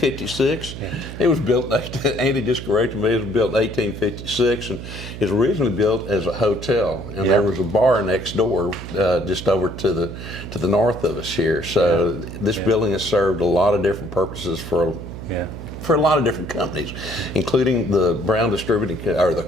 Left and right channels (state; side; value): noise; right; hum, 10 dB below the sound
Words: It was built, Andy just corrected me, it was built in 1856, and it was originally built as a hotel, and there was a bar next door just over to the north of us here. So this building has served a lot of different purposes for a lot of different companies, including the Crown